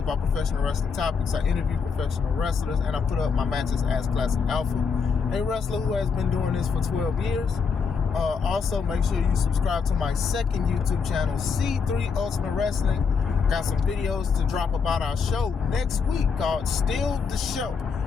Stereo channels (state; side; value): quieter; right; 5.6 dB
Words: professional wrestling topics. I interview professional wrestlers, and I put up my matches as Classic Alpha, a wrestler who has been doing this for 12 years. Also, make sure you subscribe to my second YouTube channel, C3 Ultimate Wrestling. Got some videos to drop about our show next week called Still the Show.